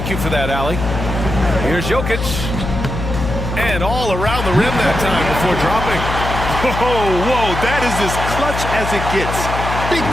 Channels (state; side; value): noise; left; hum, 5 dB below the sound